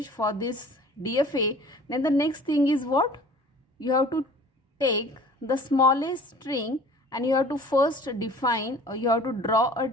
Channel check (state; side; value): normal; both; correlation 0.47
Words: for this DFA, then the next thing is what? You have to take the smallest string and you have to first define, or you have to draw a